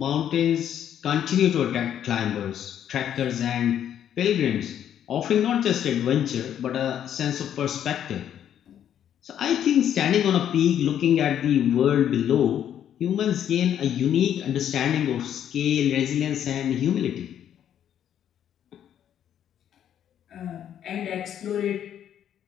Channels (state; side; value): quieter; right; 9.9 dB